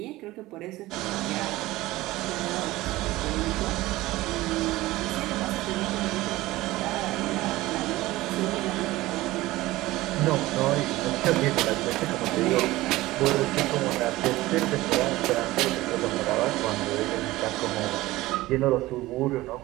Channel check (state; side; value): quieter; left; 18.1 dB